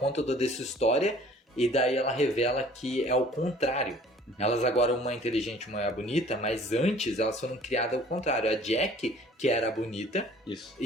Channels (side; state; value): both; normal; correlation 0.52